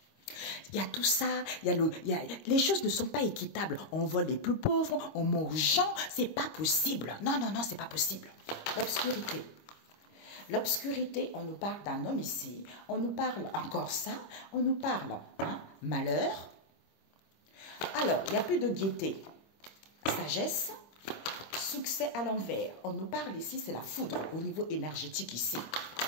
Il y a tout ça, les choses ne sont pas équitables. On vole les plus pauvres, on mange aux gens, c'est pas possible. Non, non, non, c'est pas possible. L'obscurité. L'obscurité, on nous parle d'un homme ici, on nous parle encore ça, on nous parle malheur. Alors, il n'y a plus de gaieté, sagesse, succès à l'envers. On nous parle ici, c'est la foudre au niveau énergétique ici.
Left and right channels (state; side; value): late; right; 25 ms